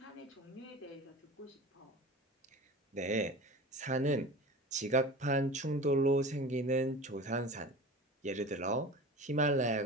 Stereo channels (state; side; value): normal; both; correlation 0.35